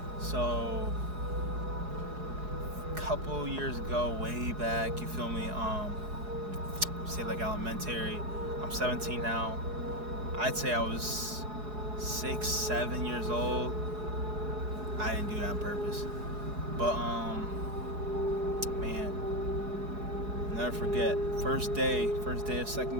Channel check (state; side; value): late; left; 4.8 ms